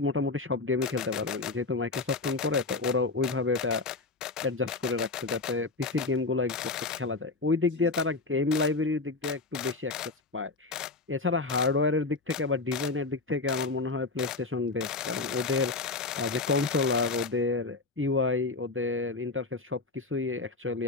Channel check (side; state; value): right; quieter; 3.7 dB